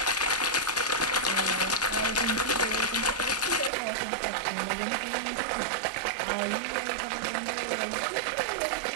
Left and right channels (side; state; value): left; drops out; at 3.7 s